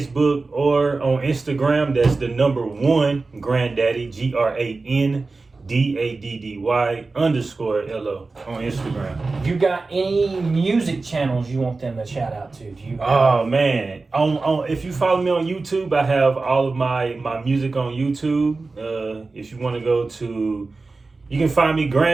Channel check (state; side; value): quieter; left; 3.7 dB